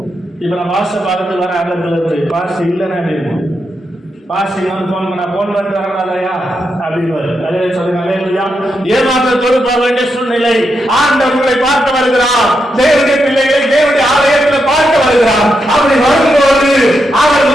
இப்ப நான் பாஸ்ட பார்த்து வர அங்க பாஸ்ட் இல்லைன்னா எப்படி இருக்கும்? பாஸ்டிங் வந்து போன் பண்ண போன் பண்ணிட்டு வரக்கூடாதையா அப்படின்னு அதே சொல்லுங்க. அல்லேலூயா. ஏமாற்றத்தோடு போக வேண்டிய சூழ்நிலை. ஆண்டவர் உங்களை பார்க்க வருகிறார். தேவனுடைய பிள்ளைகளை தேவனுடைய ஆலயத்தில் பார்க்க வருகிறார். அப்படி வரும்போது அவர்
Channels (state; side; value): normal; both; correlation 0.84